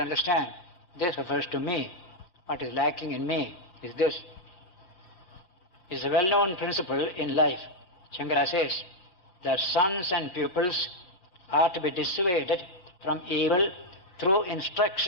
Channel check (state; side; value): late; right; 5.8 ms